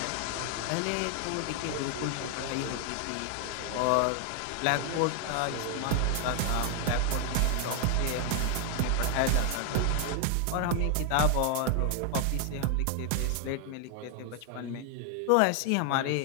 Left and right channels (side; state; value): both; different; correlation 0.00